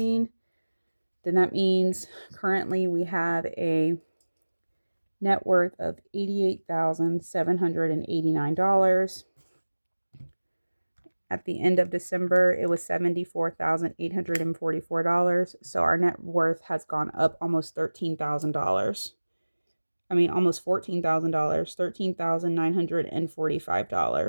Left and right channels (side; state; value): both; inverted; correlation -1.00